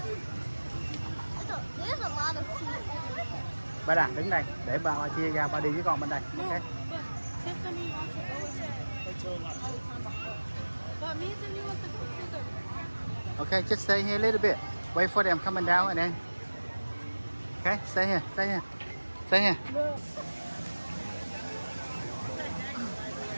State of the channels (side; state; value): both; inverted; correlation -1.00